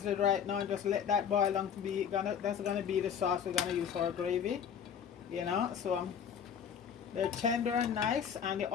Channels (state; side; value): quieter; right; 7.9 dB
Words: right now and just let that boil on to be that's gonna be the sauce we're gonna use for our gravy, you know. So they're tender and nice, and the